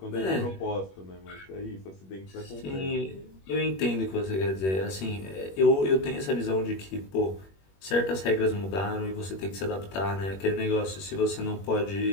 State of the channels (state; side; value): late; right; 21 ms